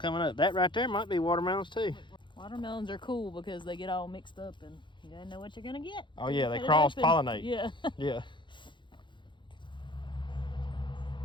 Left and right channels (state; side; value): late; right; 0.23 ms